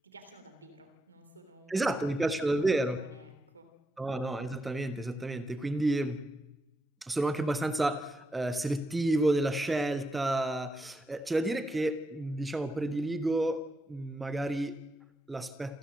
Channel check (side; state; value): both; normal; correlation 0.85